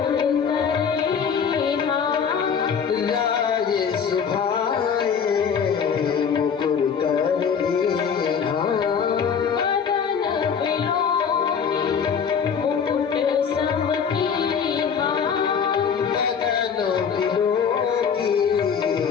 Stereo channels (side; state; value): right; quieter; 6.9 dB